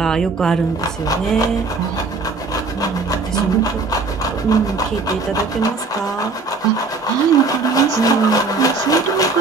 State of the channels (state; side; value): quieter; left; 4.0 dB